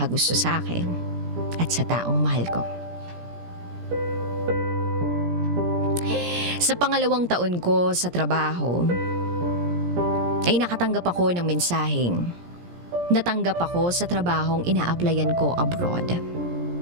sa akin at sa taong mahal ko. Sa pangalawang taon ko sa trabaho, ay nakatanggap ako ng mensaheng natanggap ako sa trabahong ina-applyan ko abroad.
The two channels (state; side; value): late; left; 17 ms